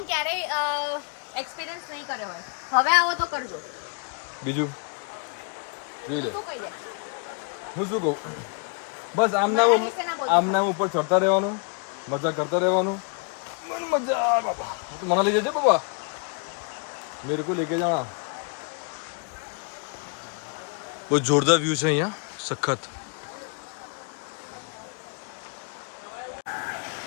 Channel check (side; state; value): right; quieter; 37.3 dB